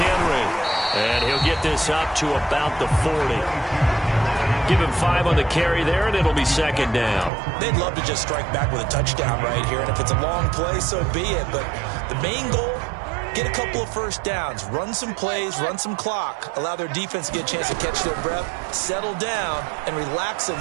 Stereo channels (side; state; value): left; drops out; at 7.3 s